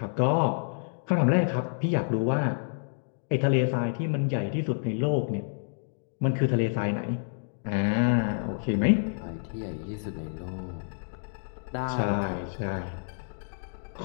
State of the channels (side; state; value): right; silent; digital silence